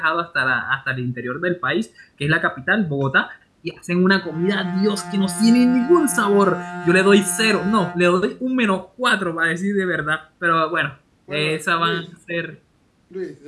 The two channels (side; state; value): both; identical; correlation 1.00